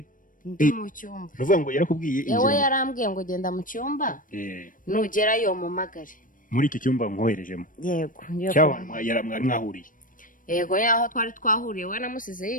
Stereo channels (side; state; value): right; late; 0.39 ms